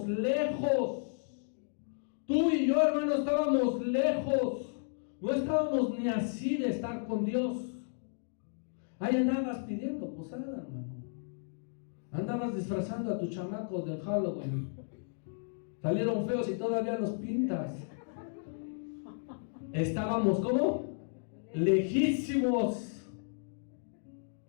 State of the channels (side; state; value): right; silent; digital silence